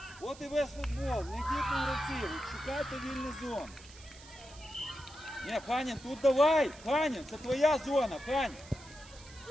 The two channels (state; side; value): noise; right; hiss, 20 dB below the sound